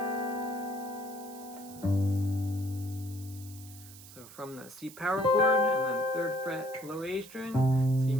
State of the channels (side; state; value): right; noise; hiss, 18 dB below the sound